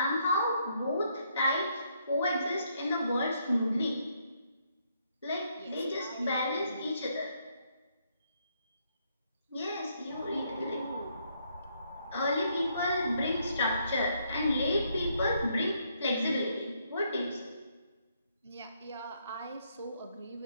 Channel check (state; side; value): inverted; both; correlation -0.73